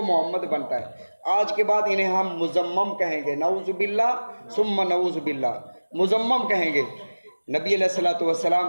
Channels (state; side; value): inverted; both; correlation -1.00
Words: محمد بنتا ہے۔ آج کے بعد انہیں ہم مزمم کہیں گے، نعوذ باللہ ثم نعوذ باللہ، مزمم کہیں گے۔ نبی علیہ الصلوۃ والسلام